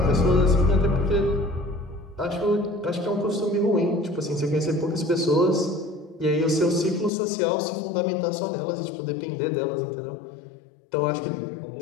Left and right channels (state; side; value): drops out; right; at 7.1 s